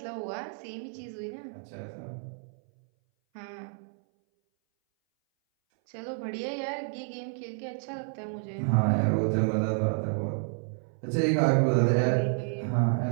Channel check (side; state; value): left; silent; 58 dB below the other